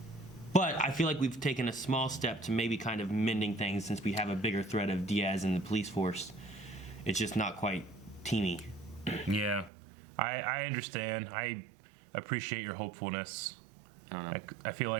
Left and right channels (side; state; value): left; drops out; at 9.7 s